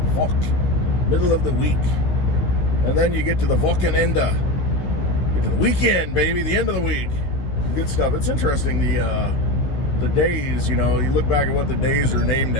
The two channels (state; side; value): late; right; 16 ms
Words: Middle of the week. And then you get to the Wochenende. Get to the weekend, baby. The end of the week. Good stuff. It's interesting, the days, you look back at what the days are named